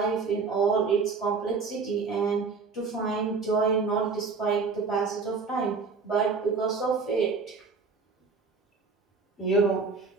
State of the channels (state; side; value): quieter; left; 4.7 dB